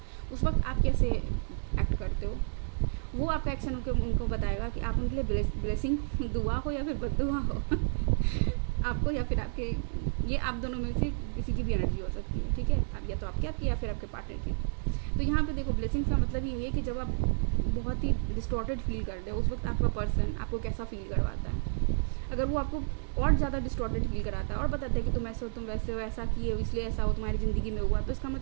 उस वक्त आप कैसे एक्ट करते हो, वो आपका एक्शन उनको बताएगा कि आप उनके लिए ब्लेसिंग दुआ हो या फिर बद्दुआ हो आपको या फिर आपके, ये आप दोनों में से किसी की भी एनर्जी हो सकती है, ठीक है। आप या तो आपकी या फिर आपके पार्टनर की। तो यहाँ पे देखो, ब्लेसिंग्स का मतलब यही है कि जब आप बहुत ही डिस्टॉर्टेड फील कर रहे हो उस वक्त आपका पर्सन आपको कैसा फील करवाता है। अगर वो आपको और ज़्यादा डिस्टॉर्टेड फील कराता है और बताता है कि तुम ऐसे हो, तुम वैसे हो, ऐसा किए हो इसलिए ऐसा हो तुम्हारी ज़िंदगी में हुआ, तो इसका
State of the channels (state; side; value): silent; left; digital silence